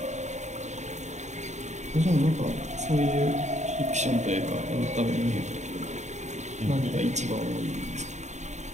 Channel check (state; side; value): late; left; 0.34 ms